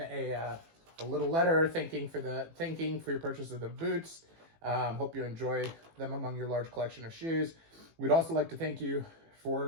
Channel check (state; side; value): late; left; 18 ms